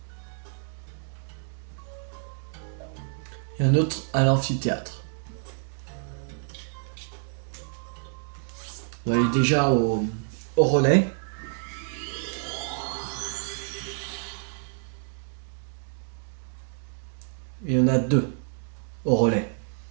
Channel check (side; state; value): left; silent; 59 dB below the other